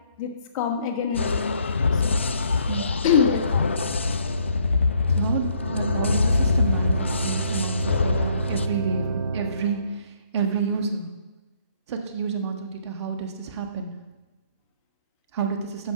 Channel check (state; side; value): inverted; both; correlation -0.66